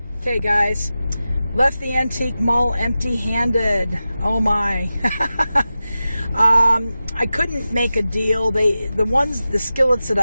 Okay, guys. Left the antique mall empty-handed. Oh my. I couldn't make a deal. The skillets that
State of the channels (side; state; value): both; inverted; correlation -0.94